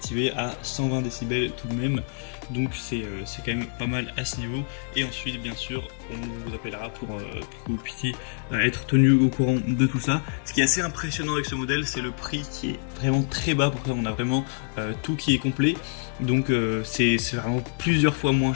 à 120 décibels tout de même. Donc c'est quand même pas mal à ce niveau. Et ensuite bien sûr on vous appellera pour que vous puissiez être tenu au courant de tout ça. Ce qui est assez impressionnant avec ce modèle, c'est le prix qui est vraiment très bas. Pour ça on a vraiment tout qui est complet. Donc c'est vraiment plusieurs fois moins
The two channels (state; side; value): silent; right; 61 dB below the other